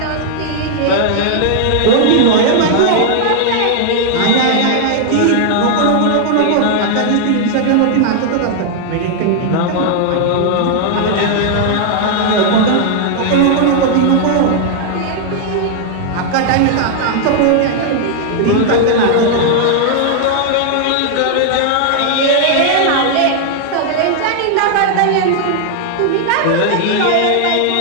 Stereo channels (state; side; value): different; both; correlation 0.00